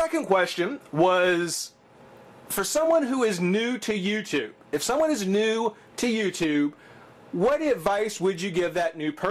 question was for someone who is new to YouTube. If someone is new to YouTube, what advice would you give that new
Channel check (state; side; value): identical; both; correlation 1.00